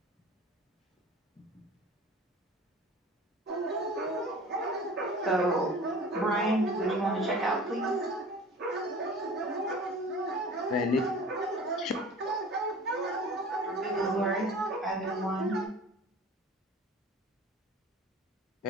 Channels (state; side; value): normal; both; correlation 0.41